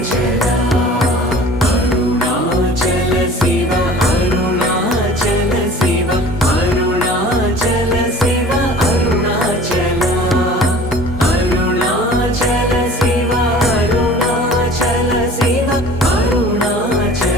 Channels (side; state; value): both; normal; correlation 0.44